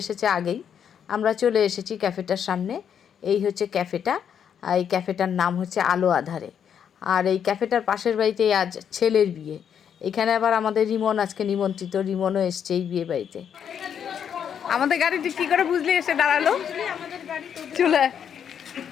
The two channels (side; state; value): right; quieter; 8.2 dB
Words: এসেছে আগেই। আমরা চলে এসেছি ক্যাফেটার সামনে। এই হচ্ছে ক্যাফেটা। এই ক্যাফেটার নাম হচ্ছে আলো আধারে। আর এই ক্যাফেটার পাশের বাড়িতেই আজ ছেলের বিয়ে। এখানে আবার আমাদের রিমন আজকে নিমন্ত্রিত, রিমনও এসছে এই বিয়ে বাড়িতে। আমাদের গাড়িটি কি করে বুঝলি এসে দাঁড়ালো? চলে